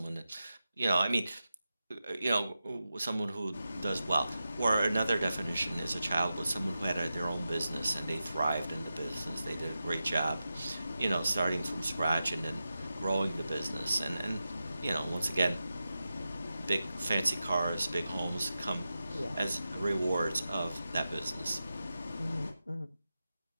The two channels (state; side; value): inverted; both; correlation -0.91